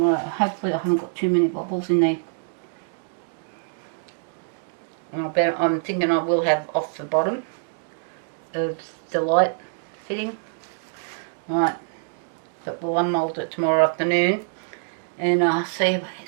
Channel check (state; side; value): silent; left; digital silence